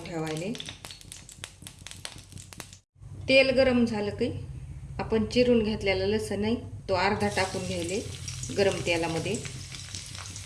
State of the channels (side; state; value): both; identical; correlation 1.00